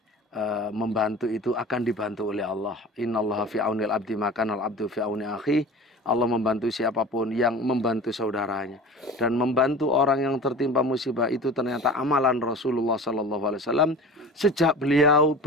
membantu itu akan dibantu oleh Allah. Innallaha fi aunil abdi makanal abdu fi auni akhi. Allah membantu siapapun yang membantu saudaranya, dan membantu orang yang tertimpa musibah itu ternyata amalan Rasulullah SAW sejak beliau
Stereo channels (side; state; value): both; normal; correlation 0.37